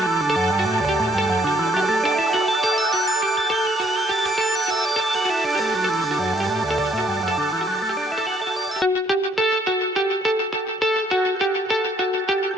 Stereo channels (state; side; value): normal; both; correlation 0.66